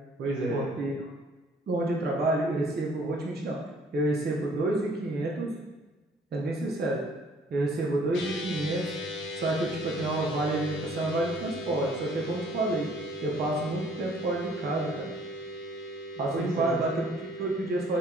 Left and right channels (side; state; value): both; normal; correlation 0.59